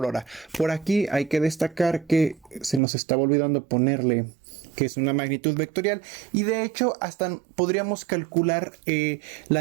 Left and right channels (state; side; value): drops out; left; at 2.8 s